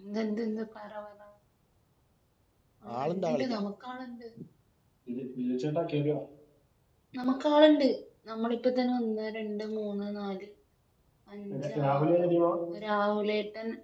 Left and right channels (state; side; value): identical; both; correlation 1.00